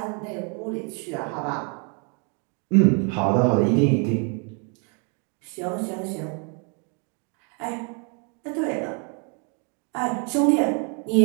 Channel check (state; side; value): quieter; left; 37.2 dB